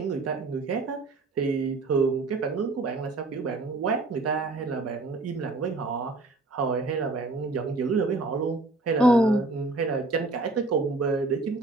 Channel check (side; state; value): left; quieter; 3.1 dB